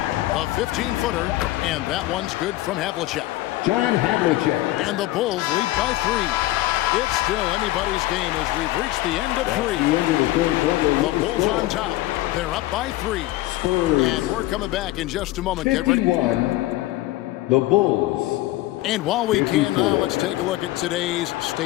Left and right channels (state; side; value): quieter; right; 17.1 dB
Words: A 15-footer, and that one's good from Havlicek. John Havlicek. And the Bulls lead by 3. It's still anybody's game as we've reached the end of 3. The Bulls on top. They're up by 3. Spurs. And we're coming back in just a moment. Get ready. 51. The Bulls. And while we can now, let's take a look at today's